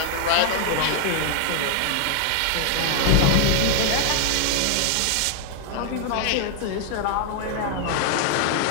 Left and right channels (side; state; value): both; different; correlation 0.00